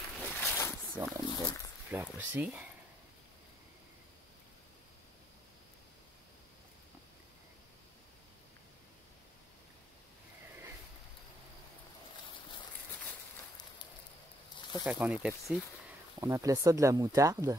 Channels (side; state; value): both; normal; correlation 0.72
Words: Ici, on a une belle petite fleur aussi. Ça, quand on était petit, on appelait ça de la moutarde.